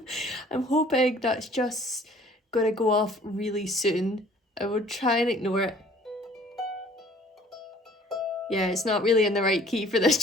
I'm hoping that's just going to go off really soon. I will try and ignore it. Yeah, it's not really in the right key for this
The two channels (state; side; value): normal; both; correlation 0.54